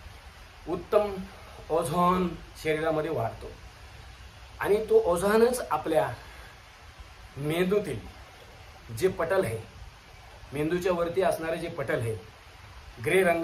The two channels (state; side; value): identical; both; correlation 1.00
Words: उत्तम ओझोन शरीरामध्ये वाढतो. आणि तो ओझोनच आपल्या मेंदूतील जे पटल आहे, मेंदूच्या वरती असणारे जे पटल आहे, ग्रे